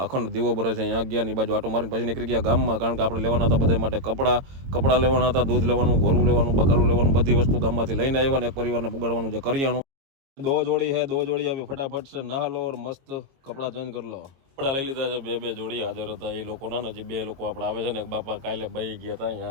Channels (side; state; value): left; late; 22 ms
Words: અખંડ દીવો બરે છે ત્યાં ગયા, ની બાજુ આટો મારીને પછી નીકળી ગયા ગામમાં, કારણ કે આપણે લેવાના હતા બધા માટે કપડાં લેવાના હતા, દૂધ લેવાનું, ઘોરું લેવાનું, બકાલું લેવાનું, બધી વસ્તુ ગામમાંથી લઈને આવ્યા ને એક પરિવારને પુગાડવાનું જે કરિયાણું. દો જોડી આવી ફટાફટ છે, નहा લો और મસ્ત કપડાં ચેન્જ કરી લો. કપડા લઈ લીધા છે, બે જોડી હાજર હતા એ લોકોના, નજી બે લોકો આપણે આવે છે ને, બાપા કાલે બહી ગયા હતા